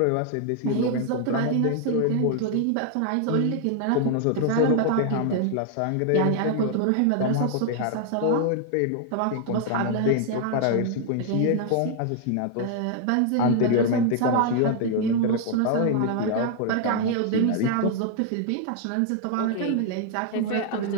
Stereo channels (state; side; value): different; both; correlation 0.00